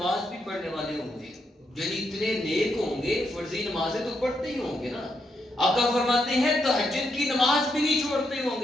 بھی پڑھنے والے ہوں گے، یعنی اتنے نیک ہوں گے، فرضی نمازیں تو پڑھتے ہی ہوں گے نا۔ آقا فرماتے ہیں تہجد کی نماز بھی نہیں چھوڑتے ہوں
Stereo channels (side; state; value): both; normal; correlation 0.80